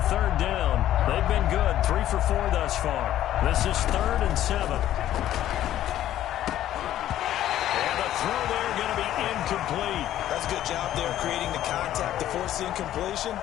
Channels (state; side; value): quieter; right; 12.5 dB